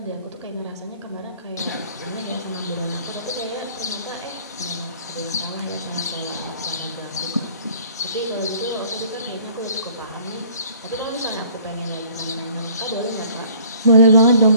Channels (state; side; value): inverted; both; correlation -0.55